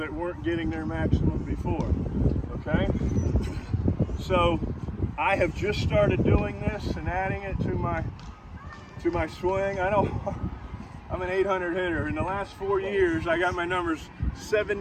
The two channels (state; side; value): identical; both; correlation 1.00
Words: weren't getting their maximum before, okay? So I have just started doing this and adding it to my swing. I know I'm an 800 hitter. In the last 4 years, I got my numbers